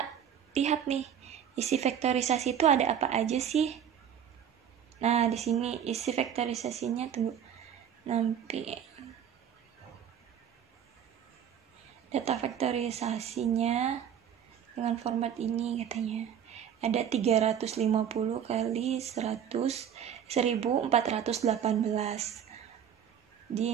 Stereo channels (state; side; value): quieter; left; 8.9 dB